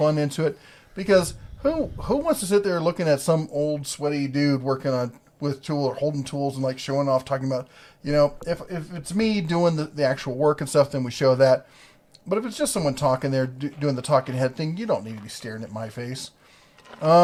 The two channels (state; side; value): identical; both; correlation 1.00